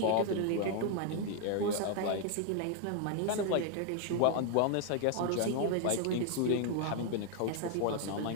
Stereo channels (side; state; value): both; different; correlation 0.00